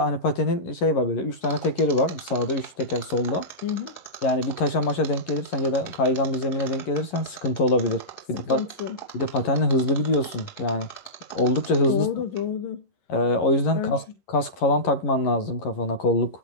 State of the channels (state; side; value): late; right; 11 ms